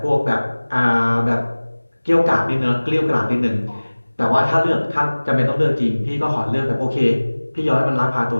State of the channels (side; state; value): both; inverted; correlation -1.00